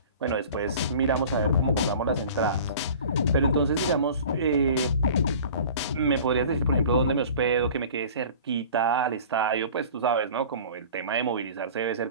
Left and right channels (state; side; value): inverted; both; correlation -0.42